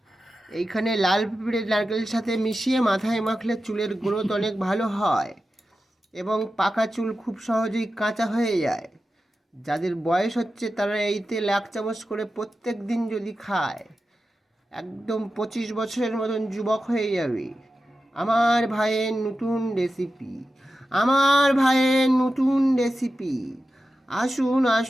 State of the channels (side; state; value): both; normal; correlation 0.92